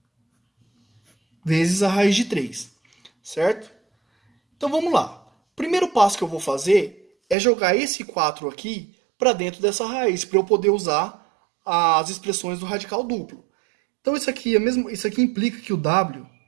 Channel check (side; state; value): left; drops out; at 7.4 s